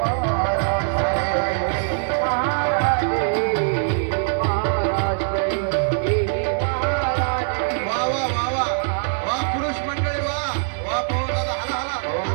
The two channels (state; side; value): silent; left; digital silence